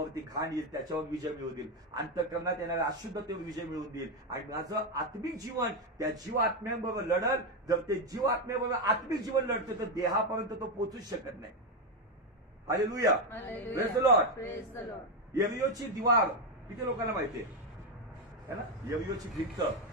घाण येईल त्याच्यावर विजय मिळवून देईल, अंतःकरणात येणाऱ्या अशुद्धतेवर विजय मिळवून देईल. आणि माझं आत्मिक जीवन त्या जीव आत्म्यांबरोबर लढल. जर ते जीव आत्म्याबरोबर आत्मिक जीवन लढतं तर देहापर्यंत तो पोहोचूच शकत नाही. Hallelujah, praise the Lord. Praise the Lord. यरियोची दिवार किती लोकांना माहितीये है ना? यरियोची भिंत,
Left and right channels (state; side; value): normal; both; correlation 0.08